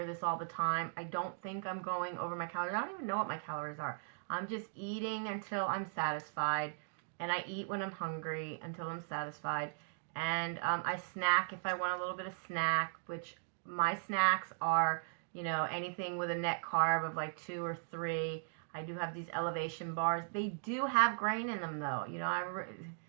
this all the time. I don't think I'm going over my calories. I don't even know what my calories are. I'm just eating until I'm satisfied. And I eat when I'm hungry until I'm satisfied. And I snack if I want a little bit of snack, which my snacks are, you know, anything with a net carb of like 2 or 3. I do have these elevation bars. They do have grain in them though. You know,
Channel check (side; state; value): left; silent; digital silence